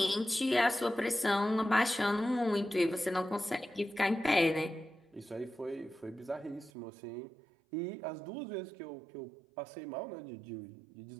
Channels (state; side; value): drops out; left; at 6.7 s